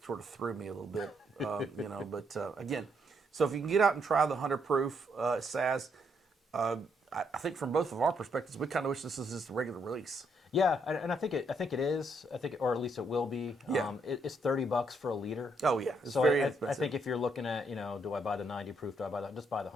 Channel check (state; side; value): normal; both; correlation 0.74